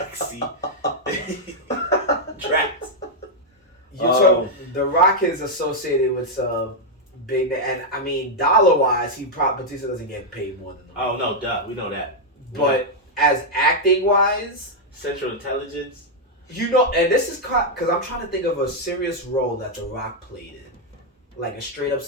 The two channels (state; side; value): normal; both; correlation -0.02